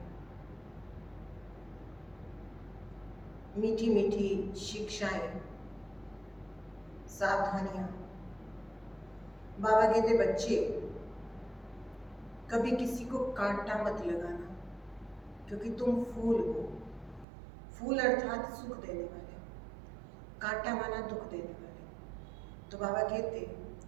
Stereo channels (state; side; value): drops out; left; at 17.2 s